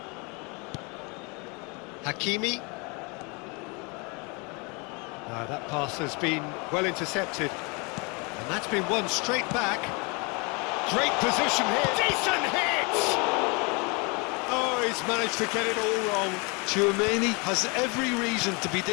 Hakimi. That pass has been well intercepted. And that's been won straight back. Great position here. Decent hit! Oh, he's managed to get it all wrong. Tchouaméni has every reason to be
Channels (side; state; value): right; quieter; 30.6 dB